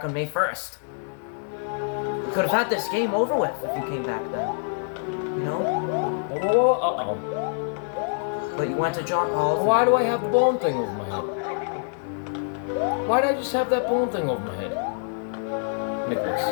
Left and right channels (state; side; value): silent; right; 61 dB below the other